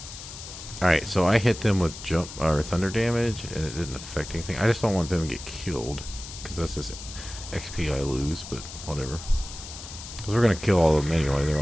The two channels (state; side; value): noise; left; hiss, 12 dB below the sound